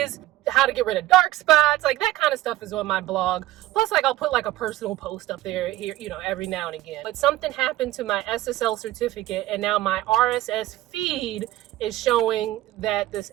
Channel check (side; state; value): left; quieter; 16.1 dB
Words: how to get rid of dark spots, like that kind of stuff is on my blog. Plus, like, I'll put like a personal post up there here, you know, every now and again. But something happened to my SSL certificate, and now my RSS feed is showing that this